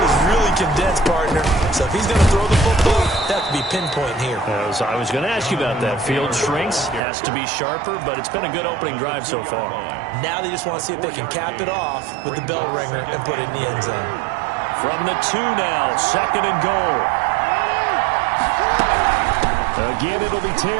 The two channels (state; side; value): drops out; left; at 7.0 s